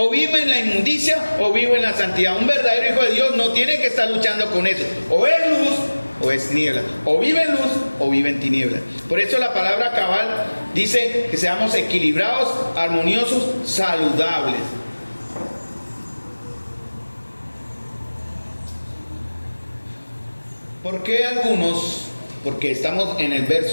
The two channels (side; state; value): both; inverted; correlation -1.00